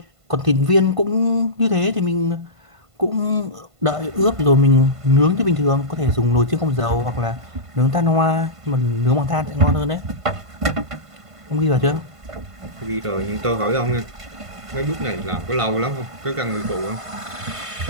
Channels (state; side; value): late; left; 1.5 ms